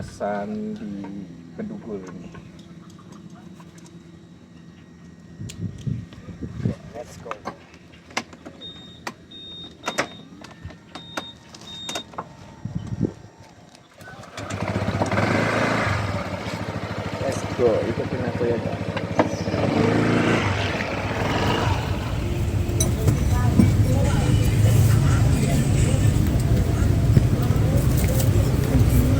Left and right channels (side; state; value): both; identical; correlation 1.00